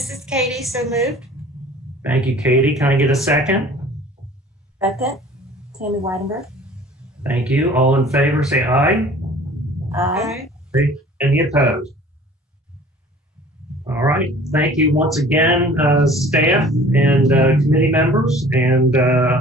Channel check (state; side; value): normal; both; correlation 0.48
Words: is Katie, so moved. Thank you, Katie. Can I get a second? Second, Tammy Weidenberg. Thank you. All in favor, say aye. Aye. Any opposed? All right. Thank you once again, staff and committee members, and